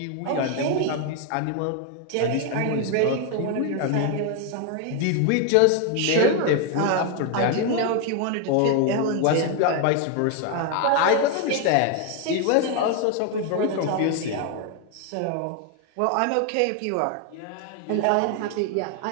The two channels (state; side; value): different; both; correlation 0.01